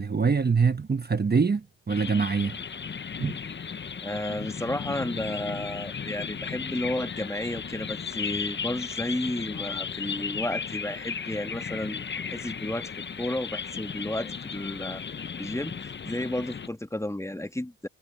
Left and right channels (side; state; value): both; normal; correlation 0.64